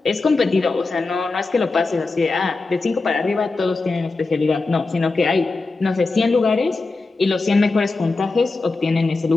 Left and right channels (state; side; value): quieter; right; 3.6 dB